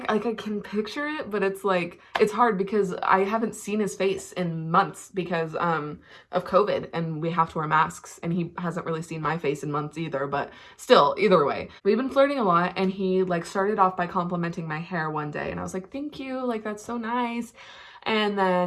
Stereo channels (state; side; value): identical; both; correlation 1.00